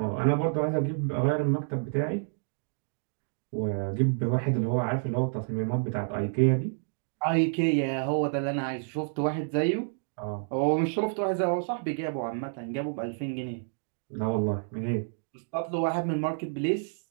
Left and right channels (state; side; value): silent; left; digital silence